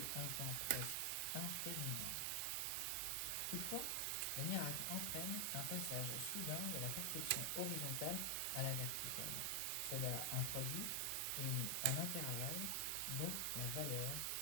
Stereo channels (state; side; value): different; both; correlation 0.00